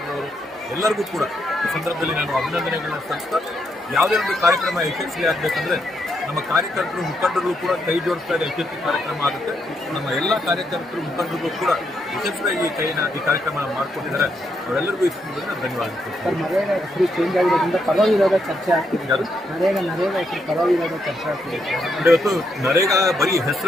ಎಲ್ಲರಿಗೂ ಕೂಡ ಈ ಸಂದರ್ಭದಲ್ಲಿ ನಾನು ಅಭಿನಂದನೆಗಳನ್ನ ಸಲ್ಲಿಸ್ತಾ, ಯಾವುದೇ ಒಂದು ಕಾರ್ಯಕ್ರಮ ಯಶಸ್ವಿ ಆಗಬೇಕಂದ್ರೆ ನಮ್ಮ ಕಾರ್ಯಕರ್ತರು, ಮುಖಂಡರು ಕೂಡ ಕೈ ಜೋಡಿಸ್ತಾ ಇದೆ. ಯಶಸ್ವಿ ಕಾರ್ಯಕ್ರಮ ಆಗುತ್ತೆ. ನಮ್ಮ ಎಲ್ಲ ಕಾರ್ಯಕರ್ತರು, ಮುಖಂಡರಿಗೂ ಕೂಡ ಯಶಸ್ವಿಯಾಗಿ ಈ ಕಾರ್ಯಕ್ರಮ ಮಾಡ್ಕೊಂಡಿದ್ದಾರೆ. ಅವರೆಲ್ಲರಿಗೂ ಈ ಸಂದರ್ಭದಲ್ಲಿ ಧನ್ಯವಾದ. ನರೇಗಾ ಹೆಸರು ಚೇಂಜ್ ಆಗಿರೋದ್ರಿಂದ ಪರವಿರೋಧ ಚರ್ಚೆ ಆಗ್ತಿದೆ. ನರೇಗಾ ಹೆಸರು ಪರವಿರೋಧ ಚರ್ಚೆ ಆಗ್ತಿದೆ. ಇವತ್ತು ನರೇಗಾ ಬರೀ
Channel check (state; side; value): normal; both; correlation 0.79